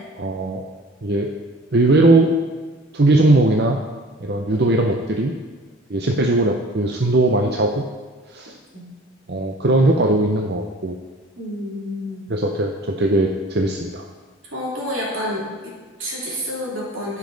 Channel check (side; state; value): both; normal; correlation 0.48